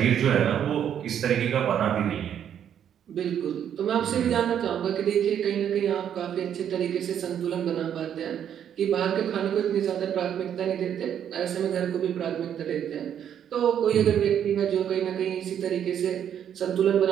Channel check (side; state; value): left; quieter; 9.3 dB